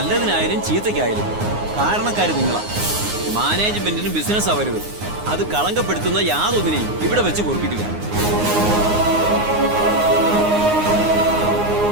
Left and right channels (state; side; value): late; left; 9.6 ms